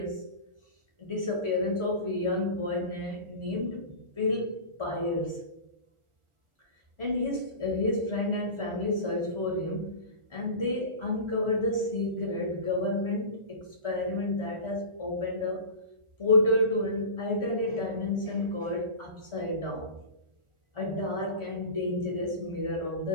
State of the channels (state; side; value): late; left; 1.4 ms